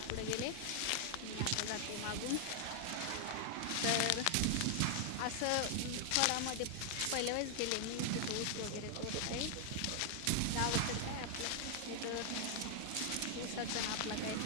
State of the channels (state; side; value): different; both; correlation 0.00